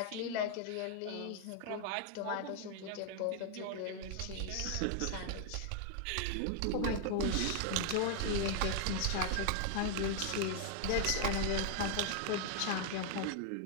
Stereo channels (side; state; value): both; different; correlation 0.00